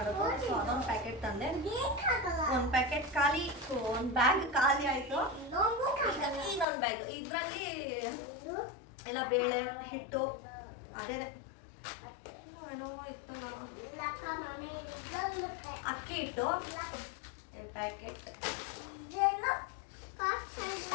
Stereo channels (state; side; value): drops out; right; at 6.7 s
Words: ಸೊ ಅದೊಂದು ಪ್ಯಾಕೆಟ್ ತಂದೆ. ಒಂದು ಪ್ಯಾಕೆಟ್ ಖಾಲಿ, ಒಂದು ಬ್ಯಾಗ್ ಖಾಲಿ ಆಯಿತು. ಇನ್ನೊಂದು ಬ್ಯಾಗ್, ಇದರಲ್ಲಿ ಎಲ್ಲ ಬೇಳೆ ಹಿಟ್ಟು ಅದೇ ಏನೋ ಇತ್ತಲ್ಲ, ಅಕ್ಕಿ ಹಿಟ್ಟು 2 ಪ್ಯಾಕೆಟ್,